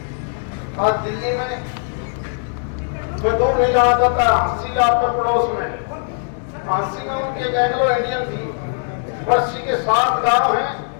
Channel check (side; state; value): right; silent; 66 dB below the other